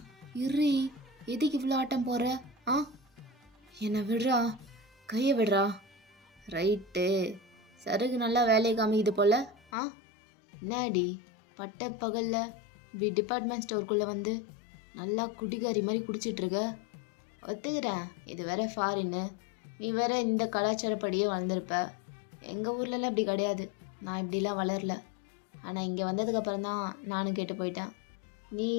இர்ரி, எதுக்கு இவ்வளோ ஆட்டம் போடுற? ஆ, என்னை விடுறா, கையை விடுறா. ரைட்டு, சருகு நல்லா வேலையை காமிக்குது போல. ஆ, என்னடி பட்ட பகலில் இப்படி டிபார்ட்மெண்ட் ஸ்டோருக்குள்ளே வந்து நல்லா குடிகாரி மாதிரி குடிச்சிட்ருக்க? ஒத்துக்கிறேன், இது வேற ஃபாரின்னு, நீ வேற இந்த கலாச்சாரப்படியே வளர்ந்துருப்ப. எங்கள் ஊர்லலாம் இப்படி கிடையாது, நான் இப்படிலாம் வளரல. ஆனால் இங்கே வந்ததுக்கப்புறம் தான் நானும் கேட்டு போயிட்டேன். நீ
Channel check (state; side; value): drops out; right; at 9.6 s